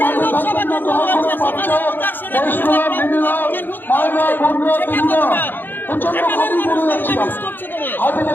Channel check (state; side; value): late; right; 0.093 ms